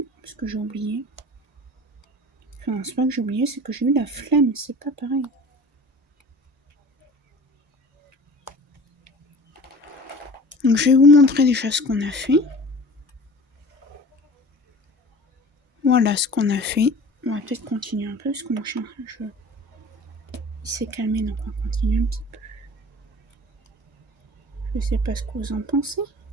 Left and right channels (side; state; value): both; normal; correlation 0.41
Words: parce que j'ai oublié. Enfin, c'est pas que j'ai oublié, c'est que j'ai eu la flemme, c'est pas pareil. Donc je vais vous montrer déjà ce qu'on a fait. Voilà ce qu'on a fait. On va peut-être continuer un peu, parce que mon chien, il s'est calmé, donc on va continuer un petit peu. Je sais pas ce que vous en pensez.